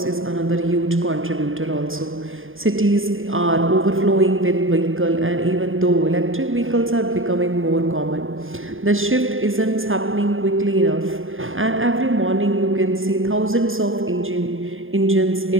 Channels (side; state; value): left; late; 0.59 ms